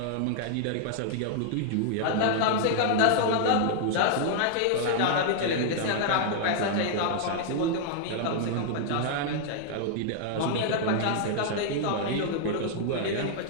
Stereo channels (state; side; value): different; both; correlation -0.01